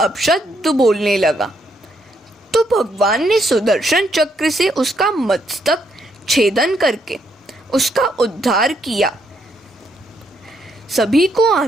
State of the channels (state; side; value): normal; both; correlation 0.75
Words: बोलने लगा, तो भगवान ने सुदर्शन चक्र से उसका मस्तक छेदन करके उसका उद्धार किया। सभी को